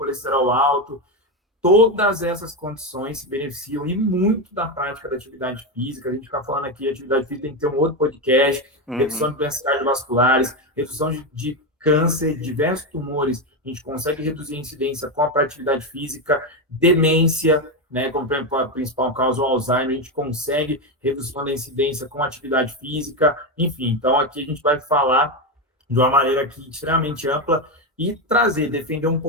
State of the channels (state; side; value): normal; both; correlation 0.11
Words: alto, todas essas condições se beneficiam e muito da prática da atividade física. A gente fica falando aqui, atividade física tem que ter um outro podcast, redução de doenças cardiovasculares, redução de câncer, diversos tumores, a gente consegue reduzir a incidência com a atividade física, demência, né, como a principal causa, o Alzheimer, a gente consegue redução da incidência com atividade física, enfim. Então, aqui a gente vai falar de uma maneira aqui extremamente ampla e trazer, defender um